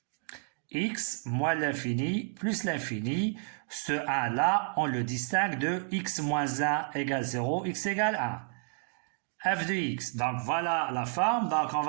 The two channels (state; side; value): silent; left; 57 dB below the other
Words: x moins l'infini plus l'infini. Ce 1-là, on le distingue de x moins 1 égale 0, x égale 1. f de x. Donc, voilà la forme. Donc, on